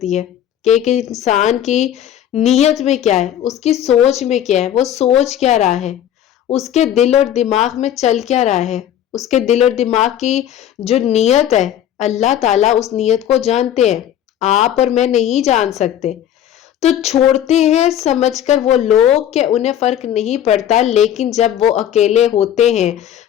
ہے، کہ ایک انسان کی نیت میں کیا ہے، اس کی سوچ میں کیا ہے، وہ سوچ کیا رہا ہے، اس کے دل اور دماغ میں چل کیا رہا ہے، اس کے دل اور دماغ کی جو نیت ہے، اللہ تعالیٰ اس نیت کو جانتے ہیں، آپ اور میں نہیں جان سکتے۔ تو چھوڑتے ہیں سمجھ کر وہ لوگ کہ انہیں فرق نہیں پڑتا، لیکن جب وہ اکیلے ہوتے ہیں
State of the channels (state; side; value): quieter; right; 10.7 dB